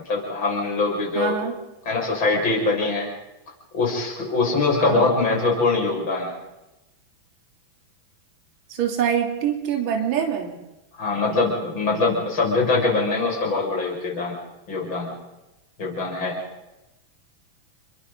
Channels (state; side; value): late; right; 6.0 ms